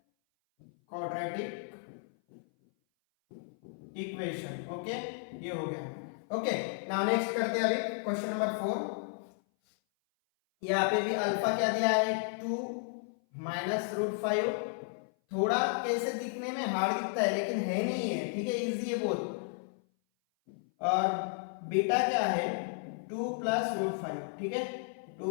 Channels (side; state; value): right; silent; 56 dB below the other